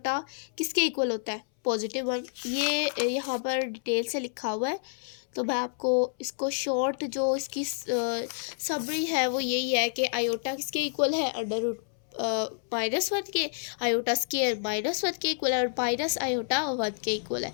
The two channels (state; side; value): silent; right; 59 dB below the other